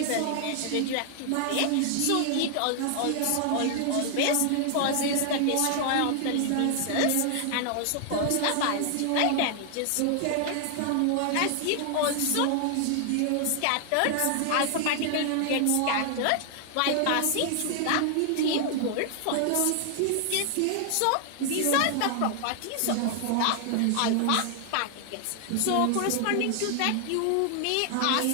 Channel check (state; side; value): different; both; correlation 0.00